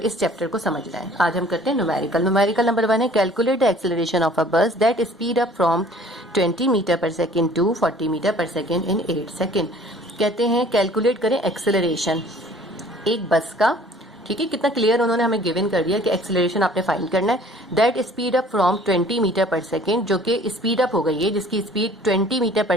चैप्टर को समझना है। आज हम करते हैं न्यूमेरिकल नंबर 1 है calculate the acceleration of a bus that speed up from 20 metre per second to 40 metre per second in 8 second. कहते हैं कैलकुलेट करें एक्सेलरेशन एक बस का। ठीक है, कितना क्लियर उन्होंने हमें गिवन कर दिया कि एक्सेलरेशन आपने फाइंड करना है। That speed up from 20 metre per second, जो कि स्पीड अप हो गई है, जिसकी स्पीड 20 मीटर पर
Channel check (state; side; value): normal; both; correlation 0.52